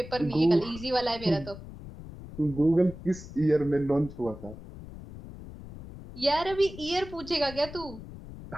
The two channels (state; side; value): noise; left; rumble, 14 dB below the sound